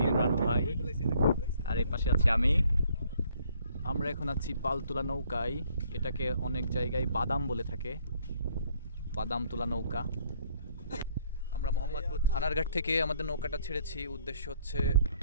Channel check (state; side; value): inverted; both; correlation -0.63